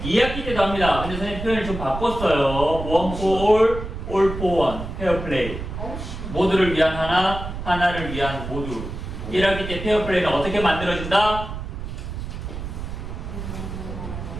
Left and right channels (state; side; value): noise; right; rumble, 7 dB below the sound